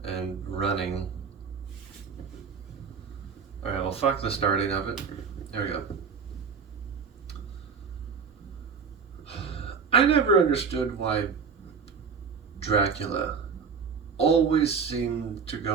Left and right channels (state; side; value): quieter; left; 5.9 dB